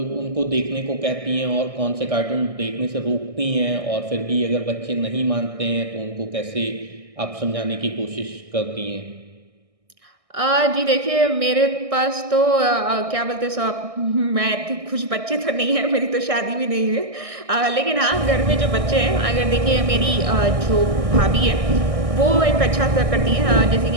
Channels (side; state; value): left; late; 1.6 ms